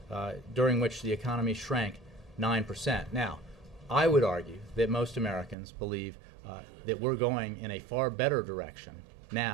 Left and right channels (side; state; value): left; drops out; at 5.6 s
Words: during which the economy shrank 9%. Now, I would argue that most Americans believe that we're going in a far better direction